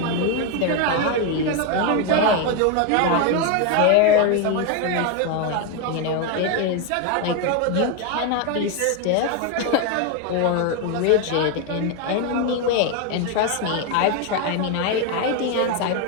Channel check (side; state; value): both; different; correlation 0.02